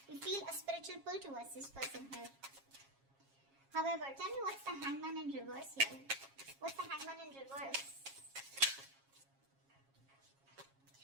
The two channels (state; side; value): late; left; 7.3 ms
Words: feel a spiritual pull towards this person here. However, tell me what's the Hangman in reverse here? What's the Hangman in reverse?